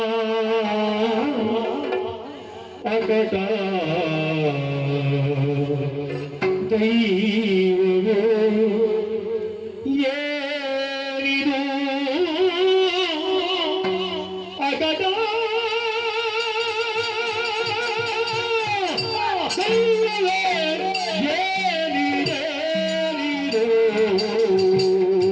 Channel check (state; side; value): identical; both; correlation 1.00